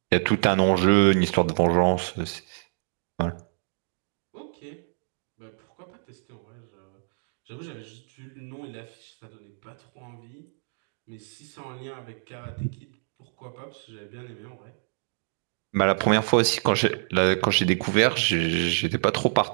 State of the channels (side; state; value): left; silent; digital silence